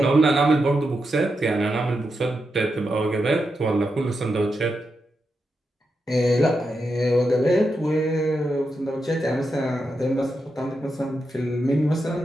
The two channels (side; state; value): both; normal; correlation 0.86